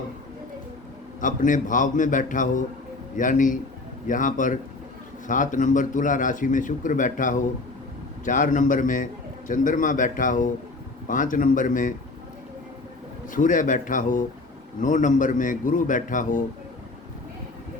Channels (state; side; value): quieter; right; 3.3 dB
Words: अपने भाव में बैठा हो, यानी यहाँ पर 7 नंबर तुला राशि में शुक्र बैठा हो, 4 नंबर में चंद्रमा बैठा हो, 5 नंबर में सूर्य बैठा हो, 9 नंबर में गुरु बैठा हो,